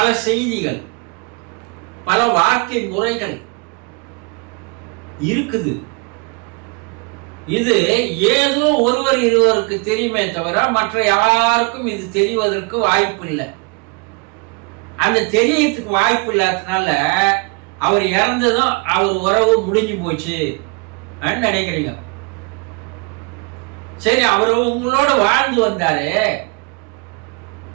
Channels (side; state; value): left; quieter; 30.7 dB